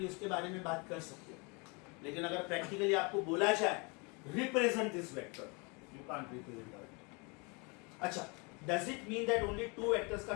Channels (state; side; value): quieter; right; 30.5 dB